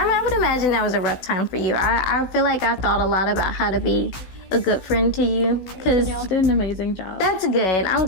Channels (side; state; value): right; late; 15 ms